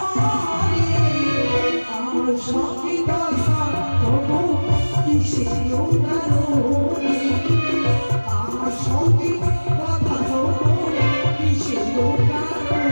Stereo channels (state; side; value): inverted; both; correlation -1.00